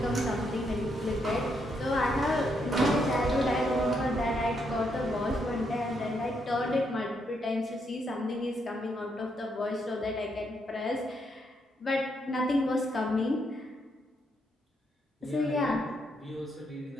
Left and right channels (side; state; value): both; normal; correlation 0.77